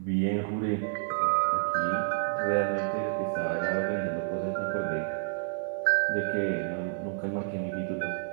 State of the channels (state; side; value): silent; left; digital silence